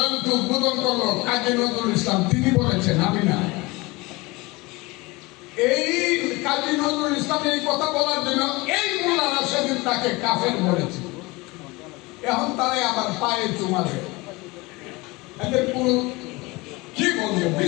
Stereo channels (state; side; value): quieter; right; 23.4 dB